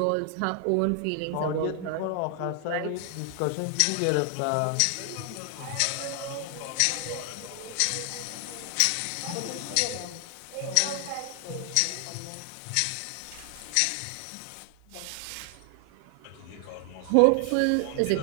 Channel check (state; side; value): different; both; correlation 0.00